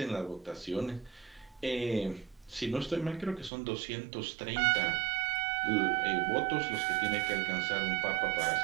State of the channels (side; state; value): left; drops out; at 3.5 s